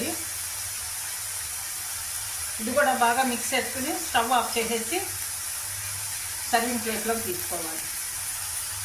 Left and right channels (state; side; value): identical; both; correlation 1.00